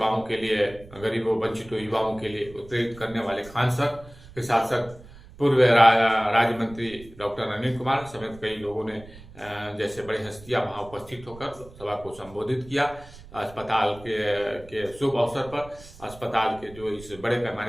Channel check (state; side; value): noise; right; rumble, 19 dB below the sound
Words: के लिए, गरीबों वंचितों युवाओं के लिए उत्प्रेरित करने वाले खान सर के साथ साथ पूर्व राज्य मंत्री डॉक्टर अनिल कुमार समेत कई लोगों ने जैसे बड़ी हस्तियां वहां उपस्थित होकर सभा को संबोधित किया। अस्पताल के शुभ अवसर पर अस्पताल के जो इस बड़े